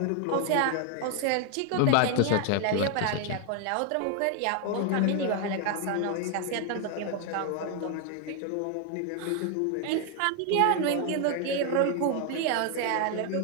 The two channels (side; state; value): both; different; correlation 0.01